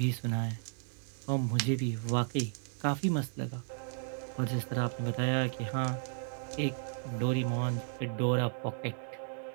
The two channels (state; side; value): silent; left; digital silence